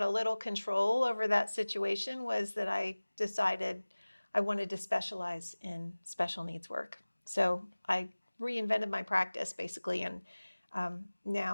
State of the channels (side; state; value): both; inverted; correlation -1.00